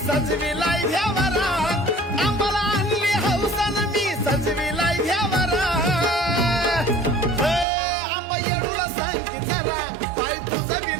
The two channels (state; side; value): drops out; left; at 7.7 s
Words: सजविलाय घ्यावरा आंबाला आणली हौसन मी सजविलाय घ्यावरा आंबा येडूला सांग की जरा पाय तुझं बी